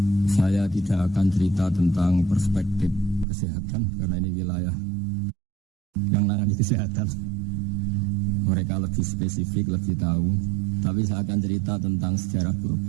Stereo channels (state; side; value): drops out; left; at 3.2 s